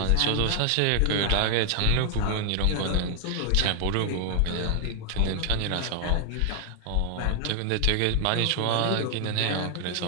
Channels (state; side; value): different; both; correlation 0.00